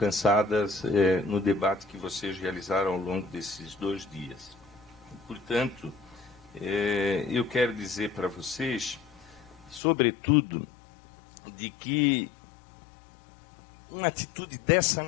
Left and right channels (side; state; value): right; drops out; at 9.8 s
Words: no debate que vocês realizaram ao longo desses 2 dias. Portanto, eu quero dizer para vocês, sobretudo, de que uma atitude dessa